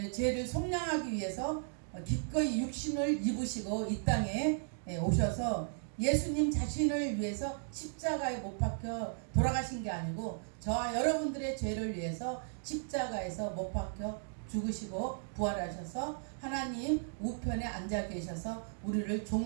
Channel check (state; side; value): silent; left; digital silence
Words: 죄를 속량하기 위해서 기꺼이 육신을 입으시고 이 땅에 오셔서 예수님 자신을 위해서 십자가에 못 박혀 돌아가신 게 아니고 저와 여러분들의 죄를 위해서 십자가에서 못 박혀 죽으시고 부활하셔서 하나님 우편에 앉아 계셔서 우리를